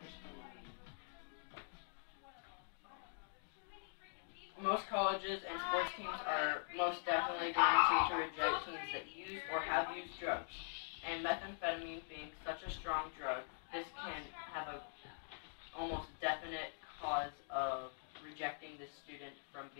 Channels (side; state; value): right; silent; digital silence